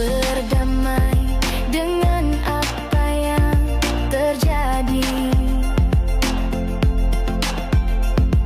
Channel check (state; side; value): identical; both; correlation 1.00